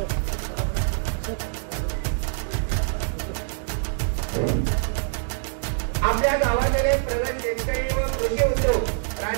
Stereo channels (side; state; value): left; silent; digital silence